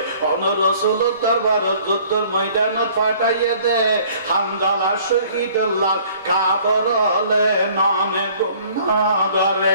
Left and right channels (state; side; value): inverted; both; correlation -0.55